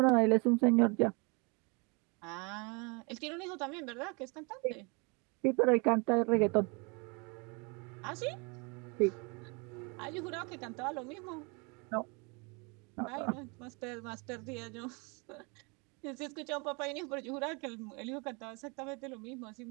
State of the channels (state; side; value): quieter; left; 30.9 dB